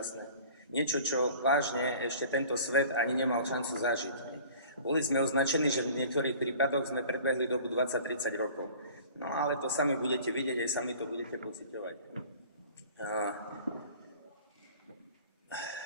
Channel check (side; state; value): both; inverted; correlation -0.46